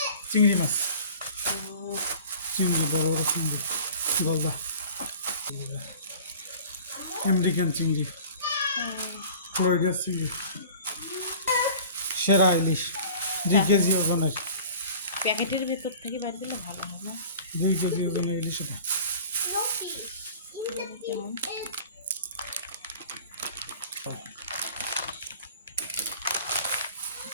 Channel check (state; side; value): inverted; both; correlation -0.44